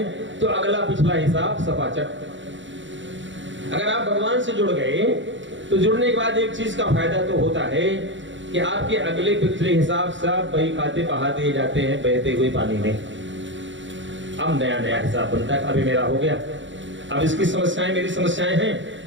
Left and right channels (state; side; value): late; left; 0.55 ms